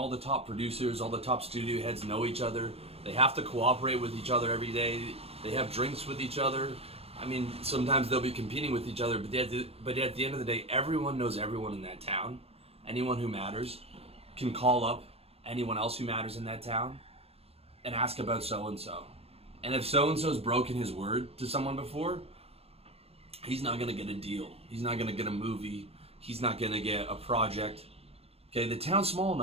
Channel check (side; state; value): left; late; 0.29 ms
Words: the top producers, all the top studio heads know each other. They have to cooperate with each other every day. They have drinks with each other. I mean, sometimes they'll be competing with each other, but at the end of the day, everyone knows everyone in that town. Anyone who matters can call up anyone else who matters in that town and ask about so-and-so. And if so-and-so's broken his word to someone before, he's not going to get a deal. He's not going to get a movie. He's not going to get a project. Okay, the town's small